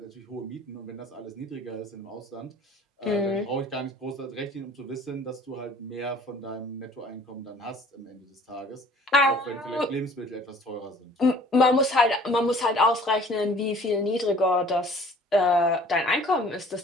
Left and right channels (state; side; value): normal; both; correlation 0.51